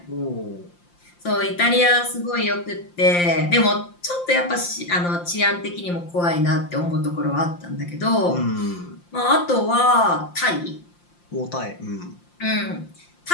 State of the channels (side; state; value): right; late; 5.7 ms